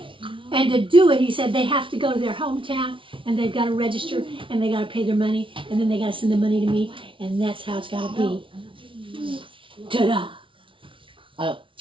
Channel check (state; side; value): late; left; 0.25 ms